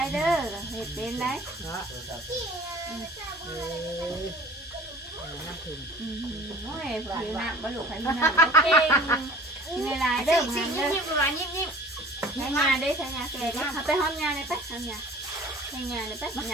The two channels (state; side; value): normal; both; correlation 0.46